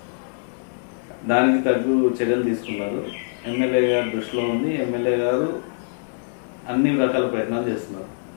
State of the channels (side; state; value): right; silent; digital silence